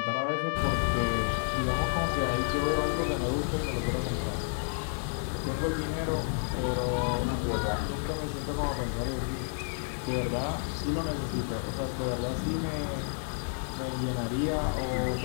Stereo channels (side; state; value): right; silent; 57 dB below the other